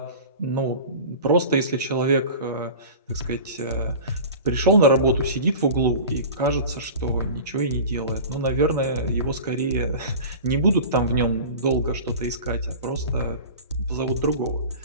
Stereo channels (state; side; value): inverted; both; correlation -0.36